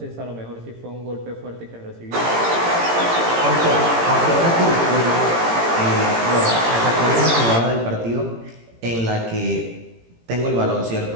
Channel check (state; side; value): late; left; 18 ms